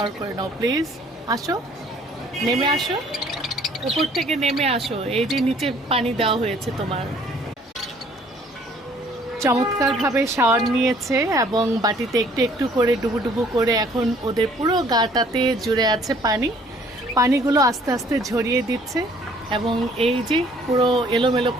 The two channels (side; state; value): both; normal; correlation 0.58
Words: করে নাও প্লিজ। আসো, নেমে আসো, উপর থেকে নেমে আসো। এই যে নিচে পানি দেওয়া হয়েছে তোমার। চমৎকারভাবে শাওয়ার নিয়েছে এবং বাটিতে একটু একটু করে ডুবু ডুবু করে এখন ওদের পুরো গাটাতে জুড়ে আছে পানি। পানিগুলো আস্তে আস্তে ঝরিয়ে দিচ্ছে এবং এই যে পুরো এলোমেলো